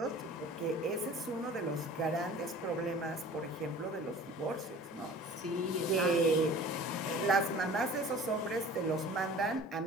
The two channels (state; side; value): normal; both; correlation 0.44